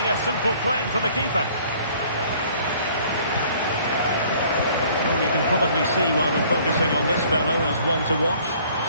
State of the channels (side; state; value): both; inverted; correlation -0.56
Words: a simple claim for the keeper. Well, you can probably see why we're focusing on this fellow as one to watch.